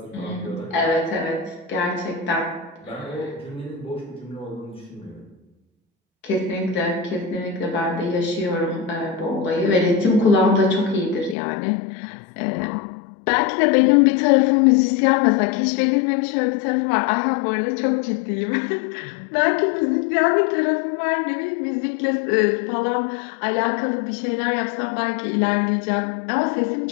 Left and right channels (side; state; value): right; drops out; at 11.4 s